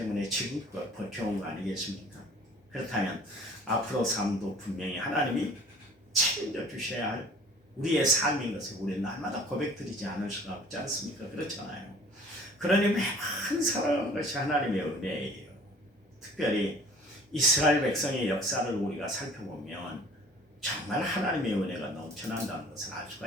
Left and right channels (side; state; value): both; normal; correlation 0.49